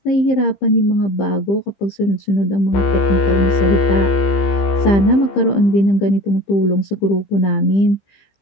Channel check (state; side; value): late; right; 15 ms